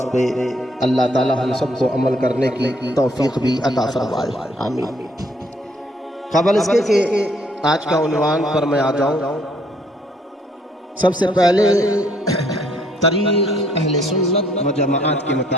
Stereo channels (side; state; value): both; normal; correlation 0.66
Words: پہ اللہ تعالی ہم سب کو عمل کرنے کی توفیق بھی عطا فرمائے، آمین۔ قبل اس کے کہ آج کا عنوان پر میں آ جاؤں، سب سے پہلے طریق اہل سنت و جماعت کے